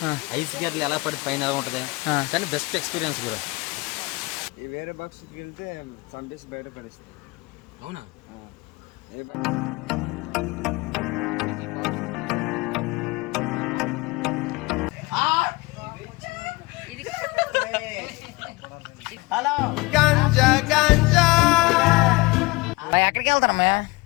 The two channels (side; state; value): right; quieter; 24.0 dB